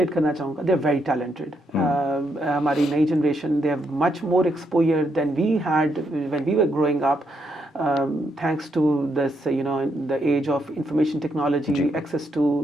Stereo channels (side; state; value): both; normal; correlation 0.78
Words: करना चाहूँगा, दे आर वेरी टैलेंटेड। हमारी नई generation, they have much more exposure than we had when we were growing up, thanks to this, you know, the age of information technology, access to